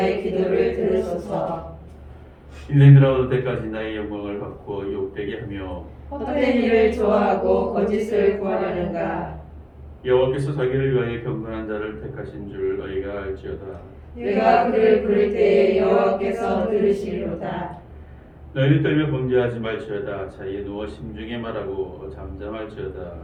기도를 들으소서. 인생 들어올 때까지 나의 영광을 받고 욕되게 하며 헛된 일을 좋아하고 거짓을 구하려는가. 여호와께서 자기를 위하여 경건한 자를 택하신 줄 너희가 알지어다. 내가 그를 부를 때에 여호와께서 들으시리로다. 너희는 떨며 범죄하지 말지어다. 자리에 누워 심중에 말하고 잠잠할지어다.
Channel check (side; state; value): both; identical; correlation 1.00